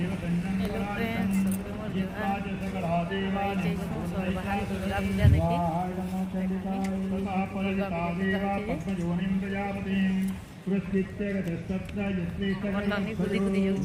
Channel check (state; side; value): identical; both; correlation 1.00